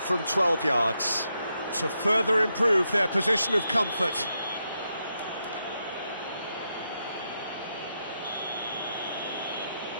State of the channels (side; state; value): both; inverted; correlation -0.83